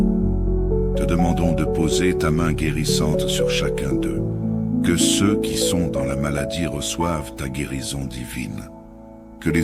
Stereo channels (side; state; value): both; identical; correlation 1.00